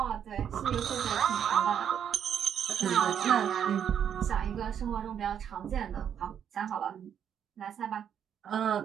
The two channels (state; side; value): quieter; left; 8.7 dB